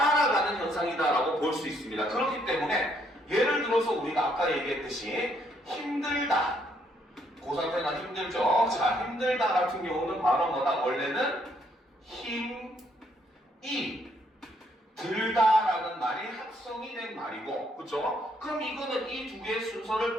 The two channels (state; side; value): normal; both; correlation 0.70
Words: 현상이다라고 볼 수 있습니다. 그렇기 때문에 예를 들어서 우리가 아까 얘기했듯이 힘들다. 고3 때나 힘들죠? 자, 힘들다 같은 경우는 바로 뭐다? 원래는 힘이 들다라는 말이 합성이 된 말이고, 그쵸? 그럼 이거는 이 두 개의 순서를